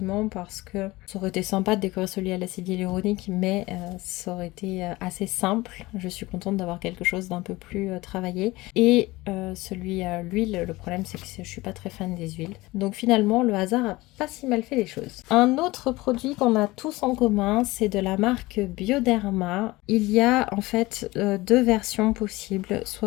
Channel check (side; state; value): right; quieter; 20.3 dB